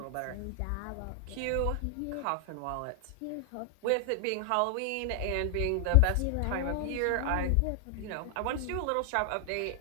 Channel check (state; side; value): different; both; correlation 0.00